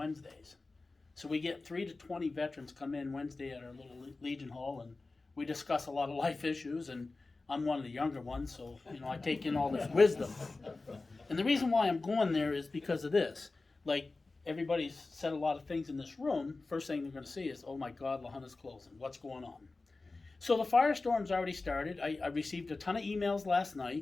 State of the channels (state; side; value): quieter; right; 3.5 dB